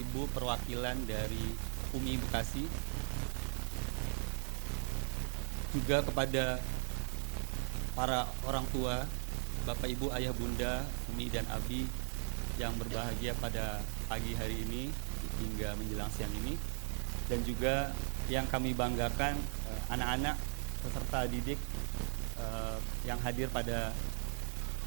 perwakilan dari UMI Bekasi, juga kepada para orang tua, Bapak Ibu, ayah bunda, Umi dan Abi yang berbahagia pada pagi hari ini hingga menjelang siang ini, dan juga yang kami banggakan anak-anak peserta didik yang hadir pada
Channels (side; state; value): left; silent; digital silence